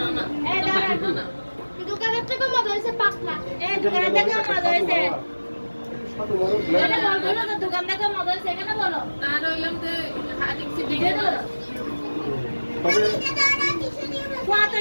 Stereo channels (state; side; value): inverted; both; correlation -1.00